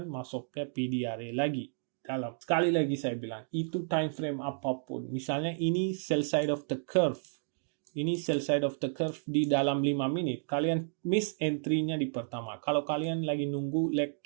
masuknya PDRA lagi. Dalam. Sekali lagi saya bilang, itu time frame apapun. Misalnya ini sell side of the curve. Ini sell side of the curve di dalam 5 menit. Kalian miss entry-nya di pertama. Kalau kalian lagi nunggu leg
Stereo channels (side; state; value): left; silent; digital silence